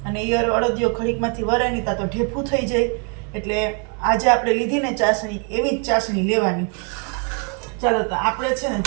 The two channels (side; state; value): left; quieter; 38.3 dB